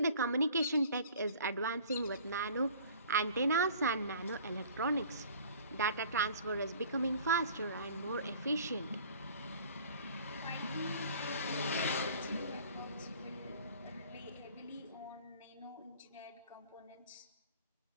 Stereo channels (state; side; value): inverted; both; correlation -0.48